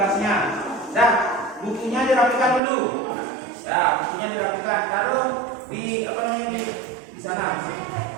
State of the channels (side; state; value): left; drops out; at 2.6 s